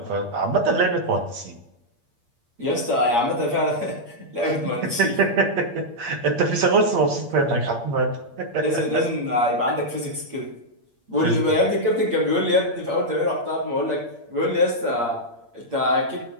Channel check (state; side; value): late; left; 8.6 ms